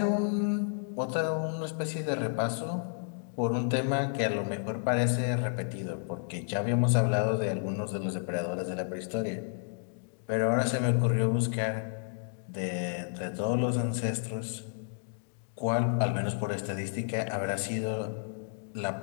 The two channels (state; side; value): silent; right; digital silence